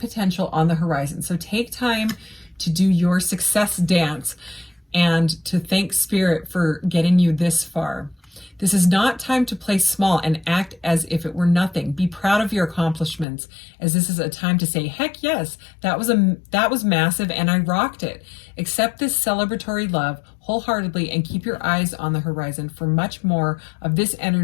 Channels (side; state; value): right; drops out; at 13.2 s